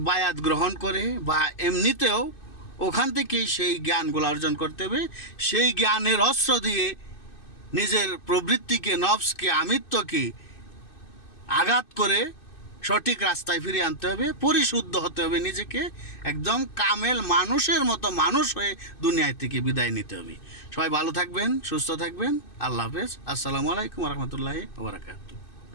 বায়াত গ্রহণ করে বা এমনিতেও ওখান থেকেই সেই জ্ঞানগুলো অর্জন করতে হবে। সেই জ্ঞানের অস্ত্র দিয়ে নিজের প্রবৃত্তিকে, নফসকে, আমিত্বকে আঘাত করে সঠিক রাস্তায় ফিরিয়ে আনতে হবে, পরিশুদ্ধ হতে হবে, নিজেকে একদম কামেল মানুষের মতো মানুষ হয়ে দুনিয়া থেকে বিদায় নিতে হবে। সবাই ভালো থাকবেন, সুস্থ থাকবেন। আল্লাহ হাফেজ। আসসালামু আলাইকুম রহমতুল্লাহি ওয়া বারাকাতুহু।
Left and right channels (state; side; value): late; right; 2.6 ms